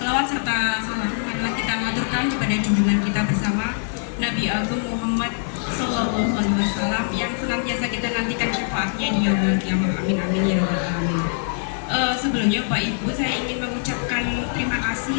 Selawat serta salam marilah kita maturkan kepada junjungan kita bersama Nabi Agung Muhammad Sallallahu Alaihi Wasallam yang senantiasa kita nantikan syafaatnya di yaumul qiyamah. Amin amin ya rabbal alamin. Sebelumnya Bapak Ibu, saya ingin mengucapkan terima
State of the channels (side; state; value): right; silent; digital silence